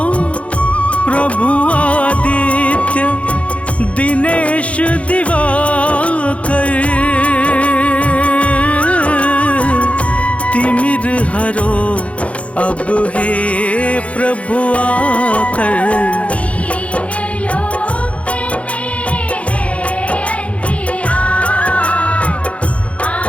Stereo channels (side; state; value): right; late; 0.063 ms